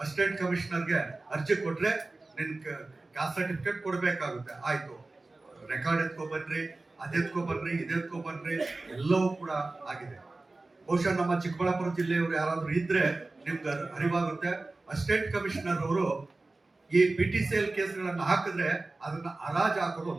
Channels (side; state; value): left; quieter; 3.2 dB